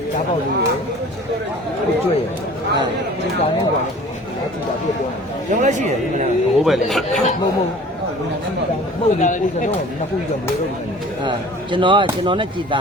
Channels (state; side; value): normal; both; correlation 0.46